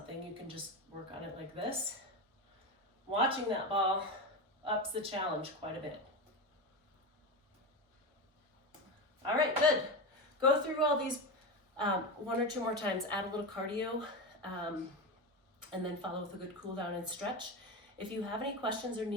you can just work on it like this. Watching that ball ups the challenge quite a bit. All right, good. Go through all these 1 or 2 more times, add a little cardio, and then follow with a good cool down and stretch. If you have any questions or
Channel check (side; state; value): both; normal; correlation 0.18